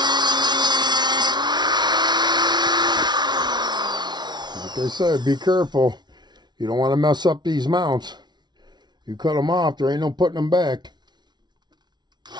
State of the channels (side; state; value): left; late; 0.20 ms